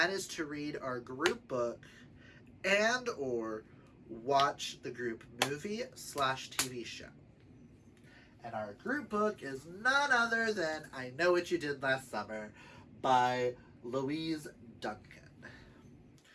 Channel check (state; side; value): identical; both; correlation 1.00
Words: is to read our group book and or watch the group movie/TV show. And our group book is none other than I Know What You Did Last Summer by Louise Duncan.